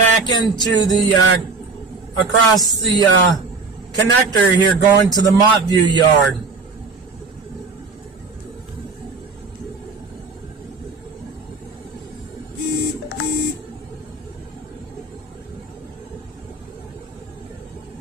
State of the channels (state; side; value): quieter; left; 4.2 dB